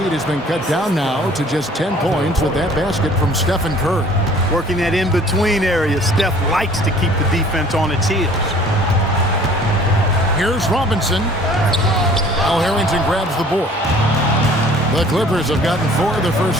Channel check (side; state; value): both; normal; correlation 0.52